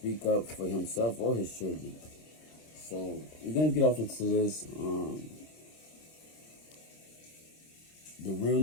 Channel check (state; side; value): late; right; 26 ms